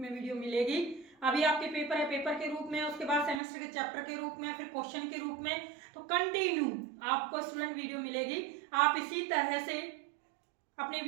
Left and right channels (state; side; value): drops out; left; at 3.4 s